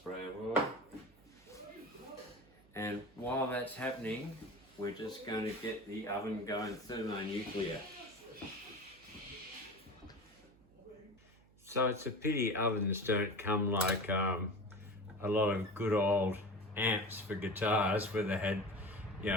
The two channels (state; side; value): noise; right; hum, 28 dB below the sound